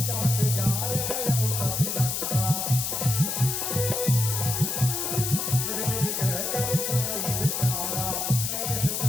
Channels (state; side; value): noise; left; hiss, 1 dB below the sound